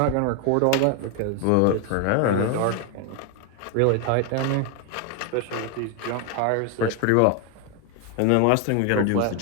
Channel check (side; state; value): both; different; correlation 0.01